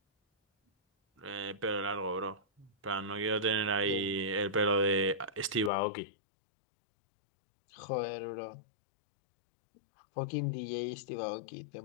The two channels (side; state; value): right; drops out; at 5.7 s